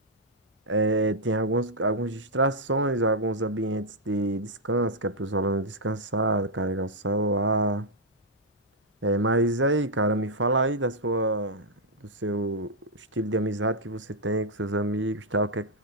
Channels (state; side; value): normal; both; correlation -0.06